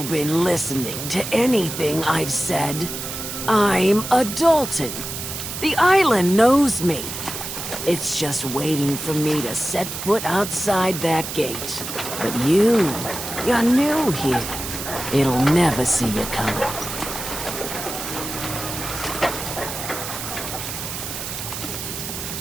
been listening to anything I've said? I'm a Dalton. The island knows me. It's just waiting for me to set foot outside that gate. But you're new here. It'll never see you coming.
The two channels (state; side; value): noise; right; hiss, 7 dB below the sound